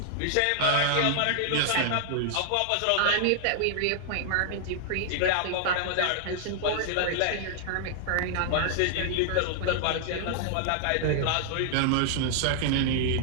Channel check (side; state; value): both; different; correlation 0.00